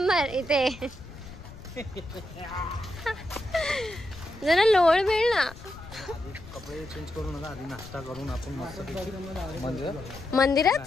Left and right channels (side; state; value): left; noise; rumble, 16 dB below the sound